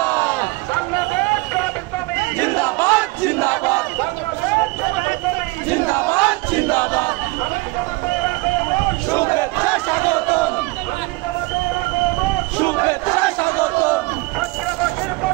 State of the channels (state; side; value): quieter; left; 24.1 dB